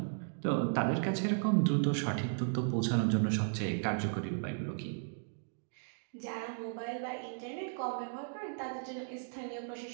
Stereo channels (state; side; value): silent; left; digital silence